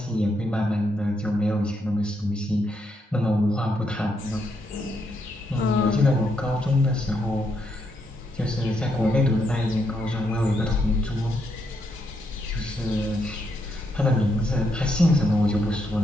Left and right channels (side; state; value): both; normal; correlation 0.78